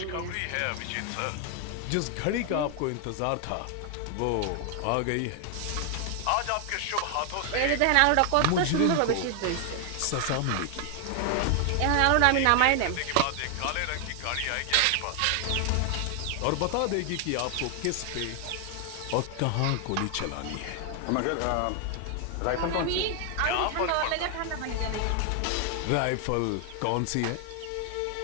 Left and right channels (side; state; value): both; different; correlation 0.00